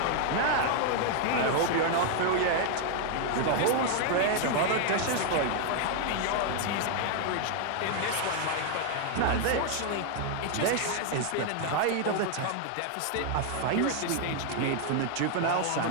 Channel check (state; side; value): different; both; correlation 0.00